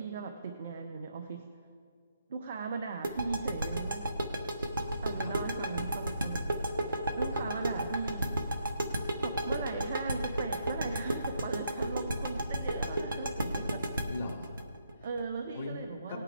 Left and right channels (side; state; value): both; inverted; correlation -0.77